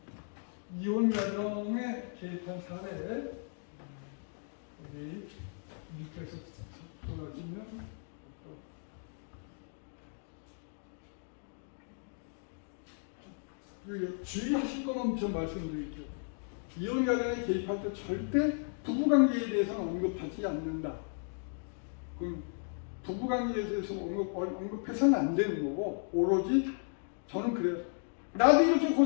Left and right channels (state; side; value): silent; right; 54 dB below the other